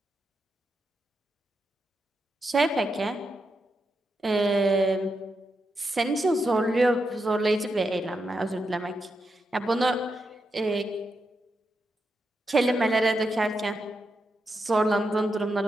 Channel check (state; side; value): normal; both; correlation 0.85